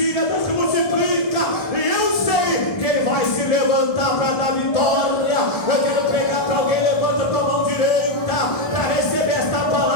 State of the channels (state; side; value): late; right; 1.7 ms